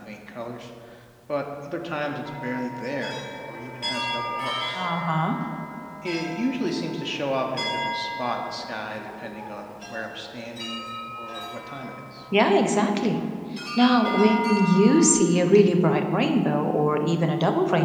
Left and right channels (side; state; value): both; identical; correlation 1.00